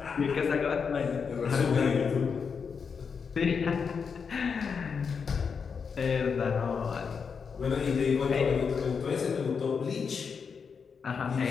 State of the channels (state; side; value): quieter; right; 5.9 dB